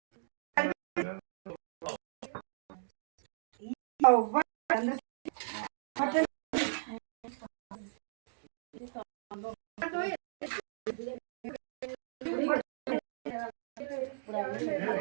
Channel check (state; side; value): silent; left; digital silence